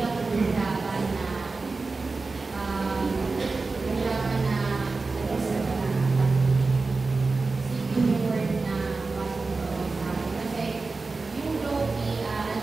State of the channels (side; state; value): left; quieter; 3.8 dB